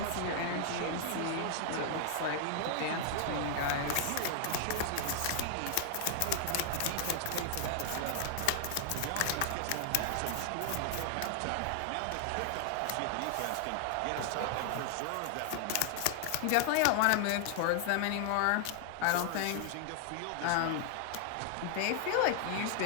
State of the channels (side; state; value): both; different; correlation 0.00